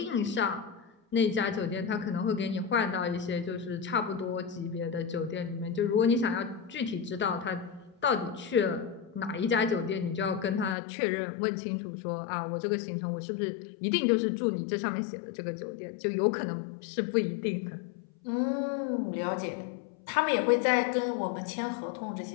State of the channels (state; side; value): drops out; right; at 10.8 s